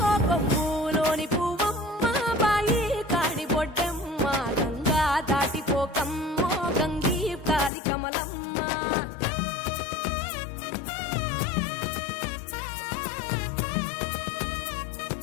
కొమ్ములోని పువ్వమ్మ బాయి కాడి బొడ్డెమ్మ గంగా దాటిపోకమ్మ గంగీ తాలి కమలమ్మ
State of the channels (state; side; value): drops out; right; at 7.7 s